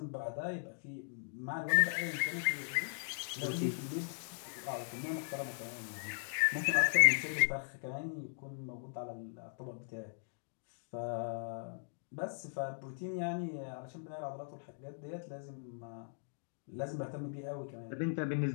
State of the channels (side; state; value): right; silent; digital silence